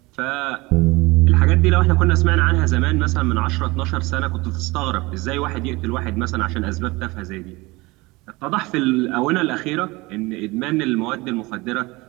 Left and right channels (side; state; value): left; quieter; 22.8 dB